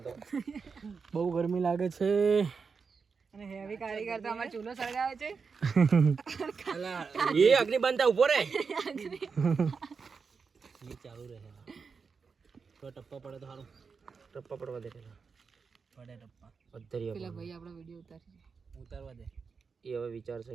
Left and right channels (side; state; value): left; quieter; 5.3 dB